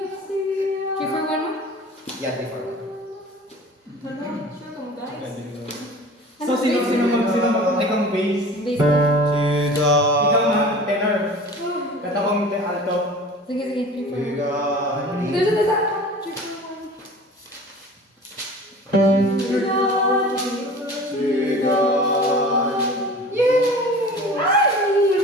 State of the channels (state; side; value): normal; both; correlation 0.41